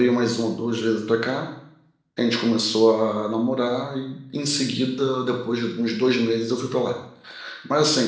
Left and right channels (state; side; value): identical; both; correlation 1.00